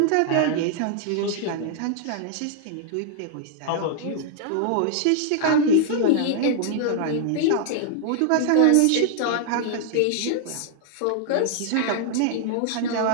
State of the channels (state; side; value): different; both; correlation 0.00